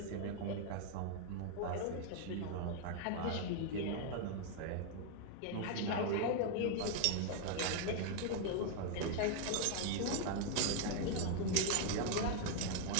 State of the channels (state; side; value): different; both; correlation 0.00